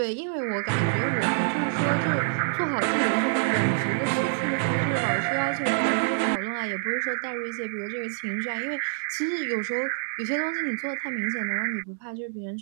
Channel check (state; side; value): silent; left; digital silence